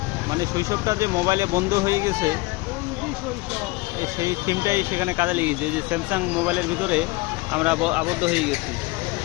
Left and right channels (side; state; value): right; quieter; 22.3 dB